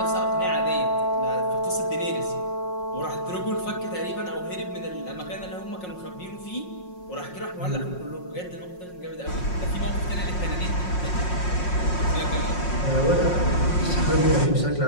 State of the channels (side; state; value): right; late; 5.5 ms